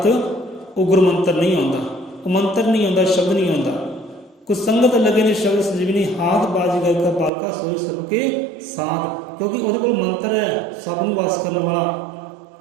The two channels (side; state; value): left; drops out; at 7.3 s